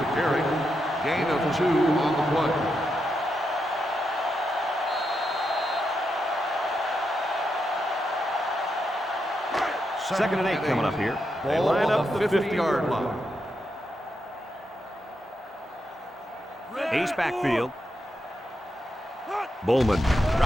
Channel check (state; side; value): normal; both; correlation 0.84